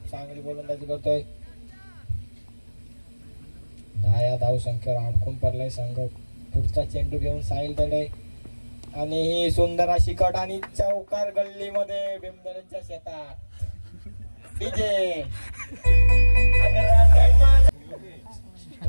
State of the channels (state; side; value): inverted; both; correlation -1.00